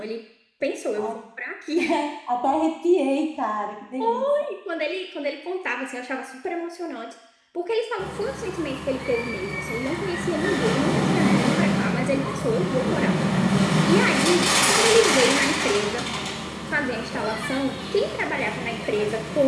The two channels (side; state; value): both; identical; correlation 1.00